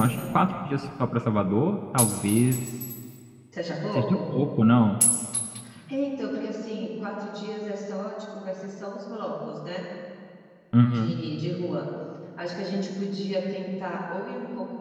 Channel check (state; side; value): identical; both; correlation 1.00